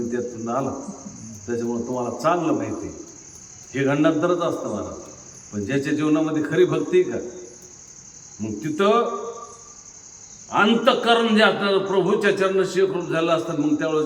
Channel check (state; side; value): identical; both; correlation 1.00